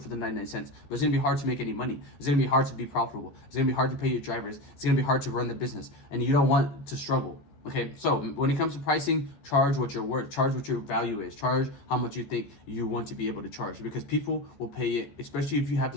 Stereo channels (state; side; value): late; right; 14 ms